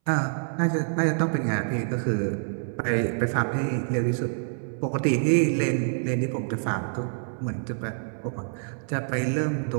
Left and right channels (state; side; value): silent; left; 60 dB below the other